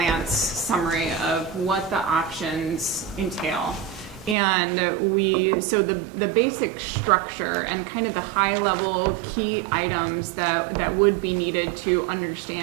summary of what the options entail. And so the basic structure and kind of the high-level key items that would be needed to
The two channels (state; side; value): drops out; left; at 4.4 s